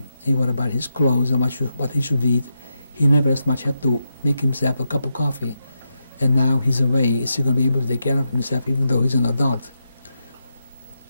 He worried about his clothes and what he should eat. He never as much had to make himself a cup of coffee. And now he's away. Is he going to be able to take care of himself even though he's an adult?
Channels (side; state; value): both; inverted; correlation -0.85